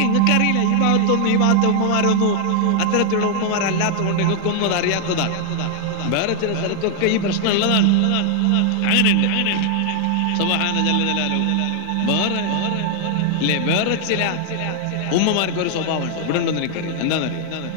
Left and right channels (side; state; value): both; different; correlation 0.00